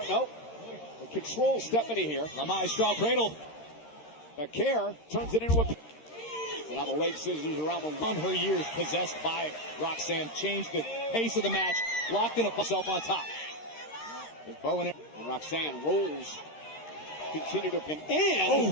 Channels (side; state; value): right; late; 13 ms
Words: Nope. Control Stephanie here. Lamai straw cradle. Vaquer turns it into a. And now the leg scissors around the on her years possessed by Roxanne. Changed the pace of the match. Locked in herself on top. There's Bowen and Roxanne rolls. Continue to pin.